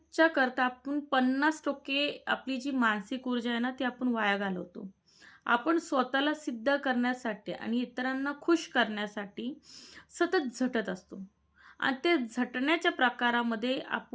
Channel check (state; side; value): identical; both; correlation 1.00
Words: करता आपण 50% आपली जी मानसिक ऊर्जा आहे ना, ती आपण वाया घालवतो. आपण स्वतःला सिद्ध करण्यासाठी आणि इतरांना खुश करण्यासाठी सतत झटत असतो. आणि ते झटण्याच्या प्रकारामध्ये